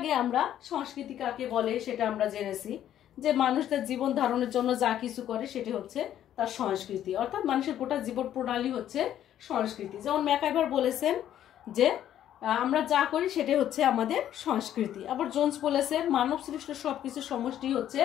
আমরা সংস্কৃতি কাকে বলে সেটা আমরা জেনেছি, যে মানুষ তার জীবন ধারণের জন্য যা কিছু করে সেটি হচ্ছে তার সংস্কৃতি, অর্থাৎ মানুষের গোটা জীবন প্রণালী হচ্ছে সংস্কৃতি। যেমন ম্যাকাইভার বলেছেন যে আমরা যা করি সেটাই হচ্ছে আমাদের সংস্কৃতি। আবার জোন্স বলেছেন মানব সৃষ্ট সবকিছু সমষ্টি হচ্ছে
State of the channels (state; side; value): quieter; right; 11.2 dB